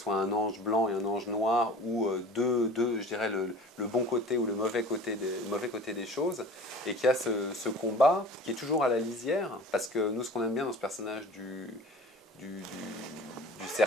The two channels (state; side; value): normal; both; correlation 0.42